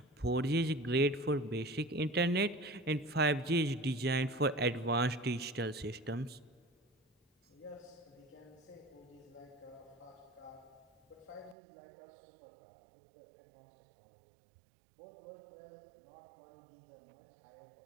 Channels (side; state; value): left; drops out; at 11.6 s